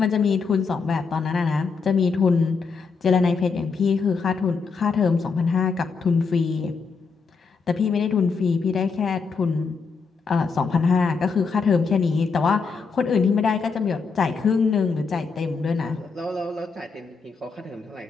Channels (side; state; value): right; quieter; 5.0 dB